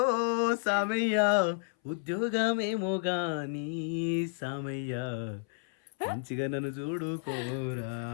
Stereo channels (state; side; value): silent; right; 57 dB below the other